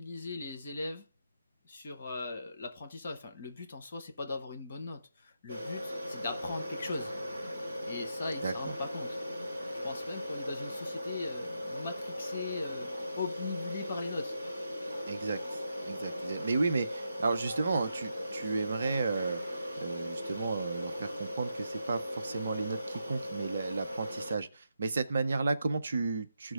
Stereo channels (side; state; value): both; inverted; correlation -0.84